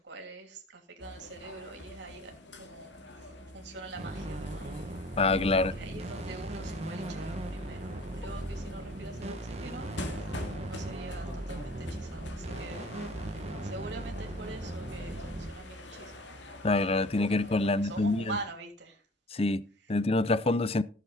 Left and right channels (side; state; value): both; normal; correlation 0.48